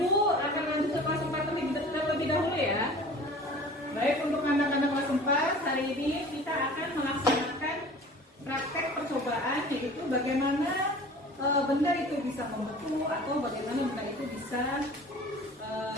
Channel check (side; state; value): both; normal; correlation 0.43